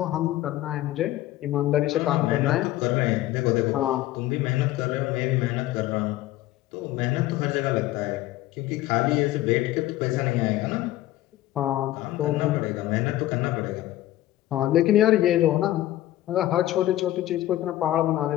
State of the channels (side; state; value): right; quieter; 15.1 dB